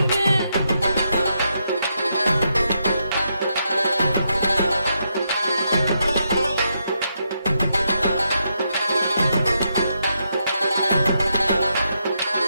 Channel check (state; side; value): inverted; both; correlation -0.81